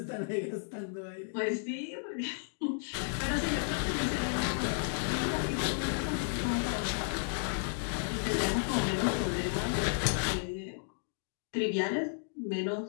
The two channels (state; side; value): silent; right; digital silence